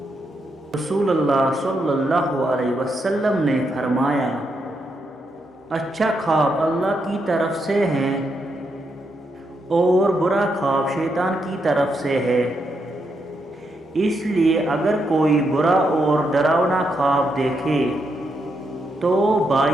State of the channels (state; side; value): normal; both; correlation 0.81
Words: رسول اللہ صلی اللہ علیہ وسلم نے فرمایا، اچھا خواب اللہ کی طرف سے ہے اور برا خواب شیطان کی طرف سے ہے، اس لیے اگر کوئی برا اور ڈراونا خواب دیکھے تو